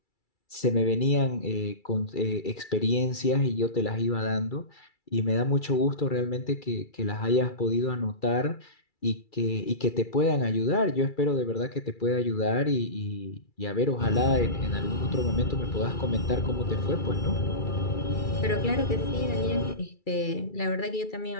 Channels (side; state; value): right; late; 2.3 ms